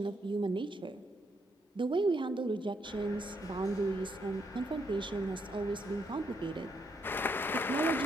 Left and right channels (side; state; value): both; normal; correlation 0.76